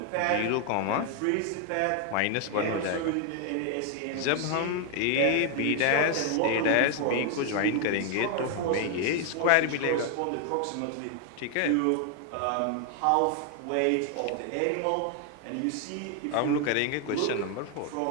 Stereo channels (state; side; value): different; both; correlation 0.01